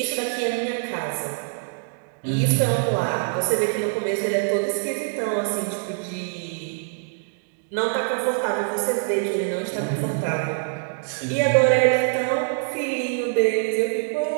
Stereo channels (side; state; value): left; silent; digital silence